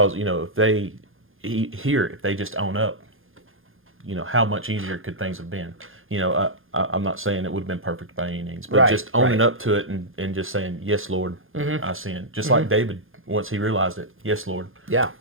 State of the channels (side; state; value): left; late; 0.59 ms